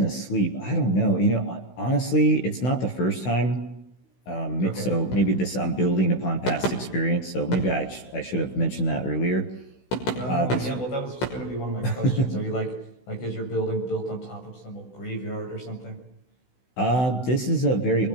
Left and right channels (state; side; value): late; right; 16 ms